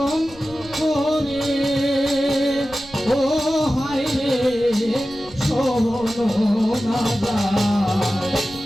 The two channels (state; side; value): noise; right; rumble, 21 dB below the sound